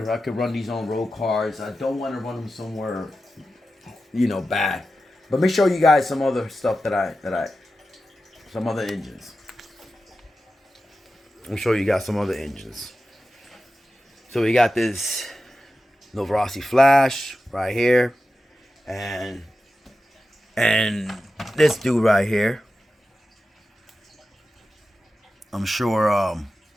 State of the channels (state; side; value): normal; both; correlation 0.92